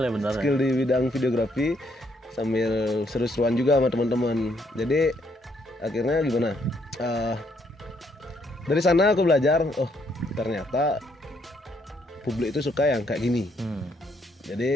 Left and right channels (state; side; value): normal; both; correlation 0.72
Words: Skill di bidang videografi sambil seru-seruan juga sama teman-teman. Jadi akhirnya gimana? Dari sana aku belajar, oh ternyata publik itu suka yang kayak gini.